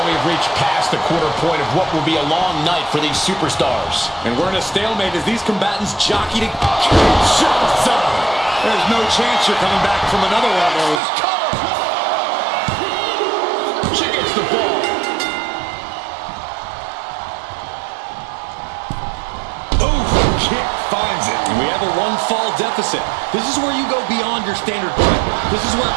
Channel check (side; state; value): left; drops out; at 11.0 s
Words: we've reached past the quarter point of what will be a long night for these superstars. And we're in a stalemate as these combatants jockey to Kinshasa. There's no chance you're coming back from another one of those. She gets the ball. Oof, kick finds it. And we have a 1-fall deficit. This is where you go beyond your standard point. This is where